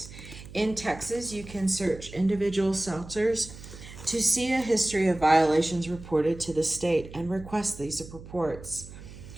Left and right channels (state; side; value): noise; right; hum, 15 dB below the sound